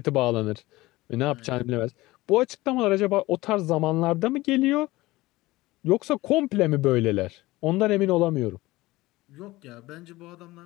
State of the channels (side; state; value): right; quieter; 19.3 dB